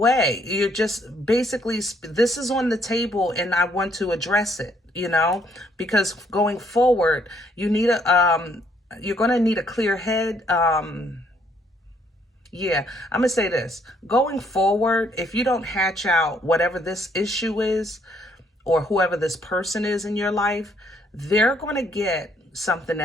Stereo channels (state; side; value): normal; both; correlation 0.68